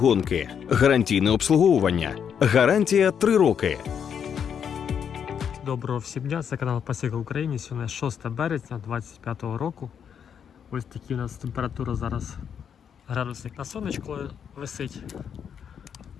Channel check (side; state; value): right; quieter; 7.8 dB